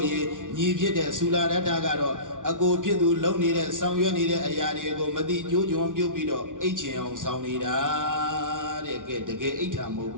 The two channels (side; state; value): left; late; 0.87 ms